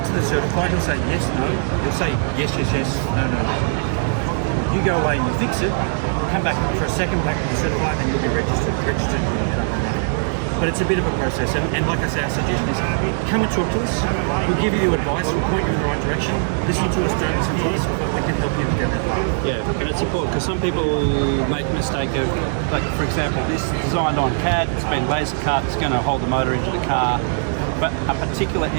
to the certified, he'll say yes, no. He'll say yes, yes, yes, no, no, no. You go away and you fix it, come back for a second back to the certified, and you'll be registered. But it's a bit of a process, and like I say, our suggestion is come and talk to us. We'll give you advice, we'll point you in the right direction. Listen to us, don't listen to us, but we can help you get that. Yeah, and it's important because some people make the mistake of, like for example, this is designed on CAD, it's been laser cut, it's going to hold the motor into the car. but a particular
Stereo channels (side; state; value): left; silent; 60 dB below the other